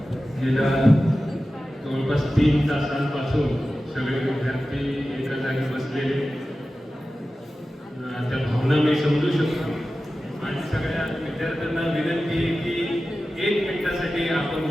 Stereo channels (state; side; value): normal; both; correlation 0.94